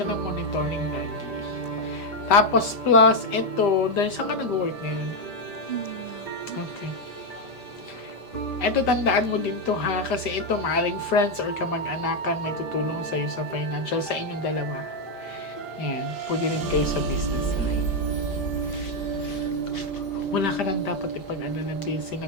ng monitoring lagi. Tapos, plus, ito, dahil saan ka nag-work ngayon? Okay. Ito, tandaan mo din to ha, kasi ito, maaring friends or kamag-anakan may tutulong sa'yo sa financial, sa inyong dalawa. Yan, pwede rin kayo sa business line. Wala ka nang dapat ipag-alala,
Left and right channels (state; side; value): late; right; 5.0 ms